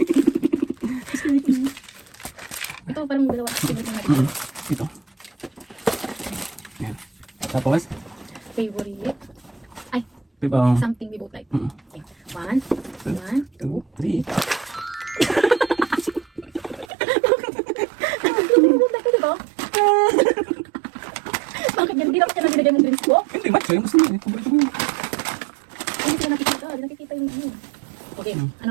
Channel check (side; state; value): left; drops out; at 16.9 s